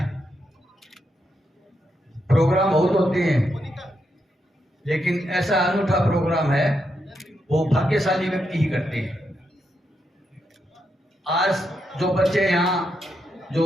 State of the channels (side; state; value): both; normal; correlation 0.82